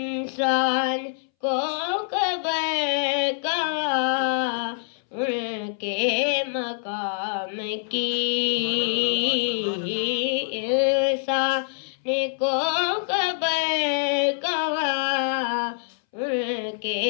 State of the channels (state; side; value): silent; right; 62 dB below the other